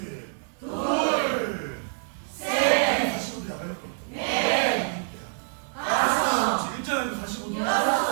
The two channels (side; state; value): left; silent; digital silence